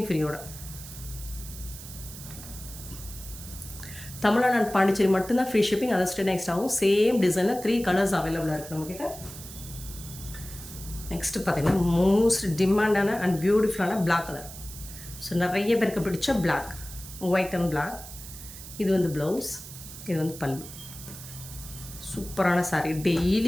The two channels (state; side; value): noise; right; hiss, 13 dB below the sound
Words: ஃப்ரீயோட. தமிழ்நாடு அண்ட் பாண்டிச்சேரி மட்டும்தான் ஃப்ரீ ஷிப்பிங், அதை ஸ்டே நெக்ஸ்ட் ஆகும். சேம் டிசைனில் 3 கலர்ஸ் அவைலபிளாக இருக்குது நம்மக்கிட்ட. நெக்ஸ்ட்டு பார்த்திங்கன்னா மோஸ்ட் டிமாண்டான அண்ட் பியூட்டிஃபுல்லான பிளாக் கலர். ஸோ நிறைய பேருக்கு பிடிச்ச பிளாக், ஒயிட் அண்ட் பிளாக். இது வந்து ப்ளவுஸ், இது வந்து பல்லு. சூப்பரான சாரீ.